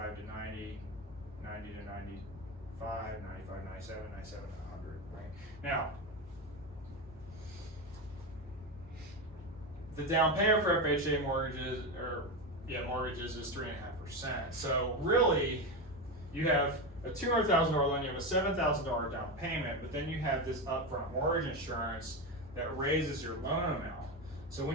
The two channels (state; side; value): normal; both; correlation 0.16